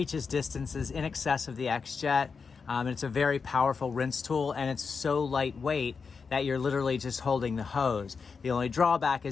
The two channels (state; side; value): quieter; right; 5.3 dB